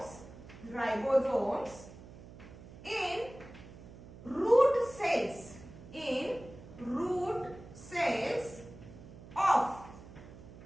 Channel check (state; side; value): noise; right; hum, 17 dB below the sound